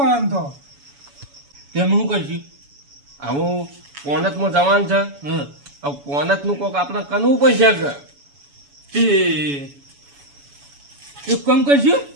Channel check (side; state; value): left; late; 7.1 ms